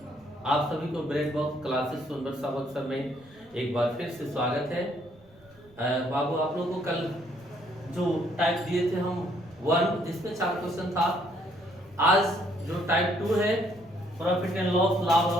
आप सभी को ब्रेड बॉक्स क्लासेस सुंदर सबक सर में एक बार फिर से स्वागत है। बाबू आप लोगों को कल जो टाइप दिए थे हम 1 जिसमें 4 क्वेश्चन था। आज जो टाइप 2 है प्रॉफिट एंड लॉस, लाभ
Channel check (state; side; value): noise; right; rumble, 27 dB below the sound